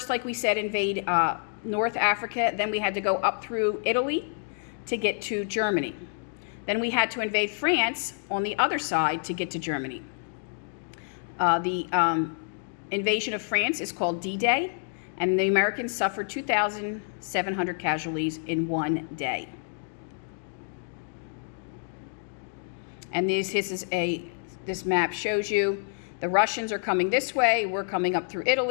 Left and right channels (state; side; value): silent; right; digital silence